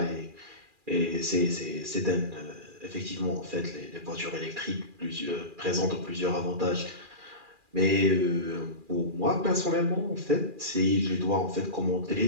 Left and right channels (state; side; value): late; left; 2.4 ms